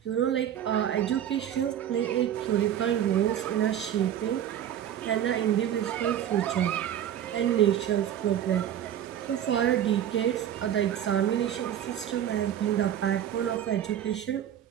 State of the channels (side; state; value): left; quieter; 10.4 dB